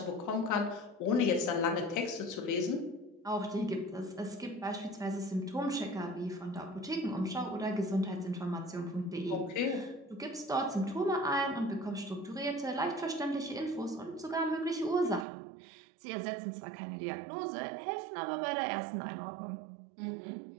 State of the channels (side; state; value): left; drops out; at 15.2 s